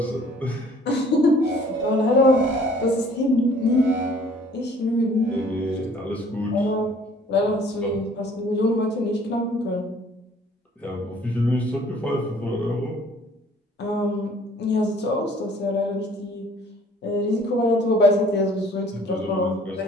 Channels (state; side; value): normal; both; correlation 0.55